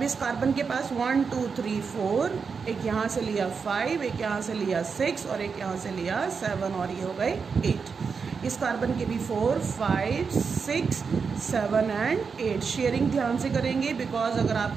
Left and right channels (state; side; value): quieter; left; 5.5 dB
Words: इस कार्बन के पास 1 2 3 4. एक यहाँ से लिया 5, एक यहाँ से लिया 6 और एक यहाँ से लिया 7 और ये हो गए 8. इस कार्बन के भी 4 5 6 7 एंड 8। शेयरिंग ध्यान से करेंगे बिकॉज अगर